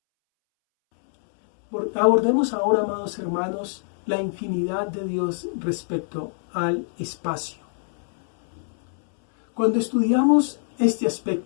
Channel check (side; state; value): right; silent; 62 dB below the other